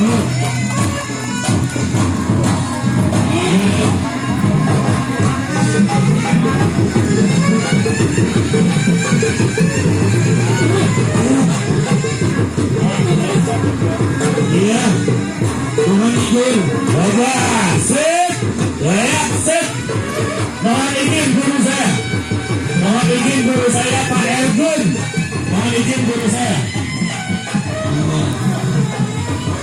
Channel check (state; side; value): identical; both; correlation 1.00